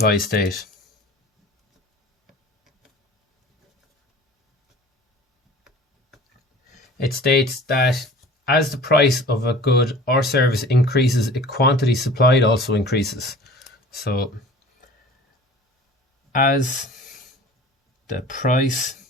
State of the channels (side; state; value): both; normal; correlation 0.44